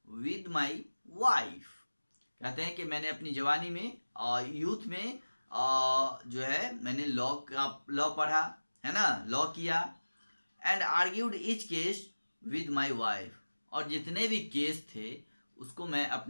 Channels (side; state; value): both; inverted; correlation -1.00